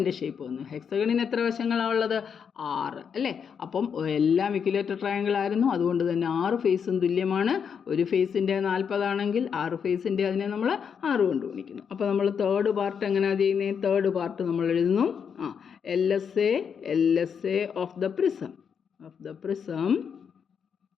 ഷേപ്പ് വന്നു. ഹെക്സഗണിന് എത്ര വശങ്ങളാണ് ഉള്ളത്? 6 അല്ലേ. അപ്പം എല്ലാം ഇക്വലേറ്റർ ട്രയാങ്കിൾ ആയിരുന്നു. അതുകൊണ്ട് തന്നെ 6 ഫേസും തുല്യമാണ്. ഒരു ഫേസിൻ്റെ 40 ആണെങ്കിൽ 6 ഫേസിൻ്റെ അതിനെ നമ്മൾ 6 കൊണ്ട് ഗുണിക്കുന്നു. അപ്പോൾ നമ്മൾ തേർഡ് പാർട്ട് എങ്ങനെയാണ് ചെയ്യുന്നത്? തേർഡ് പാർട്ട് നമ്മൾ എഴുതുന്നു LSA of the prism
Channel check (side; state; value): right; quieter; 7.0 dB